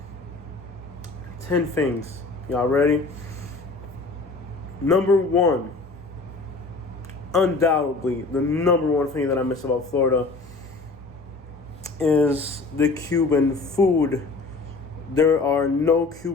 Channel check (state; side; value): quieter; right; 3.7 dB